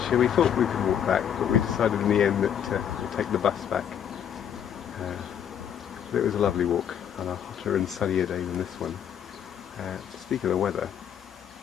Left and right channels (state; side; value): quieter; right; 9.0 dB